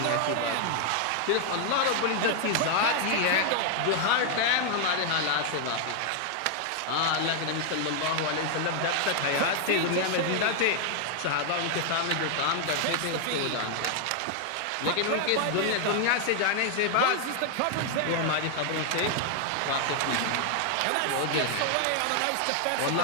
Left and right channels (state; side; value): different; both; correlation 0.00